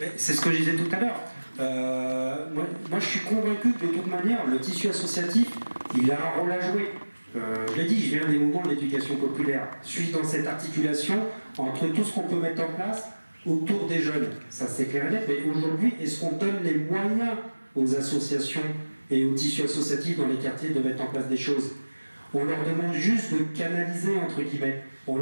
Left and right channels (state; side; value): inverted; both; correlation -1.00